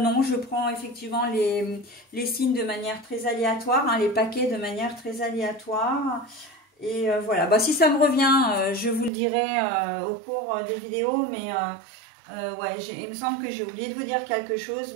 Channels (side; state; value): left; drops out; at 9.1 s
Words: effectivement les signes de manière très aléatoire, les paquets de manière très aléatoire. Et voilà, si ça me revient, je vous le dirai au cours des vidéos, mais ouais, il me semble que j'ai oublié de vous dire quelque chose,